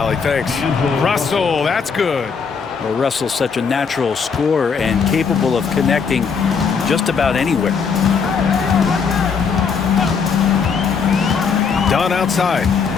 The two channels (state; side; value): quieter; right; 5.8 dB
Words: Thanks. Russell, that's good. Well, Russell's such a natural scorer and capable of connecting just about anywhere. Dunn outside.